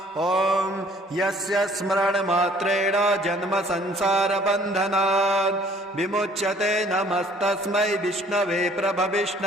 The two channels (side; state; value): both; normal; correlation 0.57